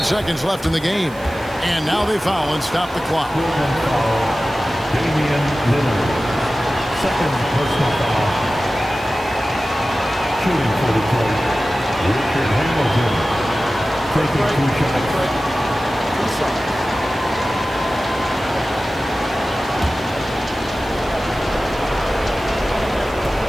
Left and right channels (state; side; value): noise; right; hiss, 23 dB below the sound